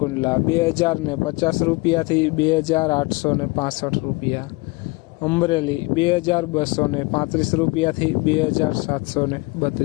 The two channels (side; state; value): right; quieter; 24.8 dB